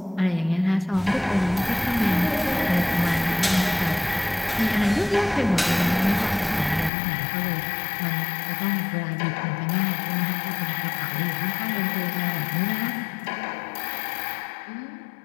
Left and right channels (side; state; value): right; drops out; at 6.9 s